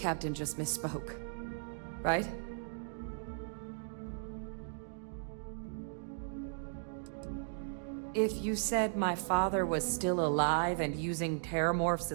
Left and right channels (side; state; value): left; silent; digital silence